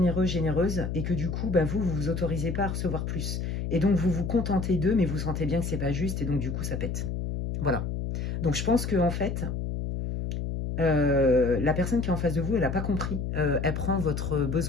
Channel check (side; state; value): left; noise; hum, 3 dB below the sound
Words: généreuse, et que du coup, bah, vous vous autorisez pas à recevoir plus. Et donc, vous vous contentez d'eux, mais vous sentez bien que c'est pas juste, et donc du coup, ça pète. Voilà. Donc, je pense que en fait, la personne qui est en face de vous, elle n'a pas compris. Elle prend votre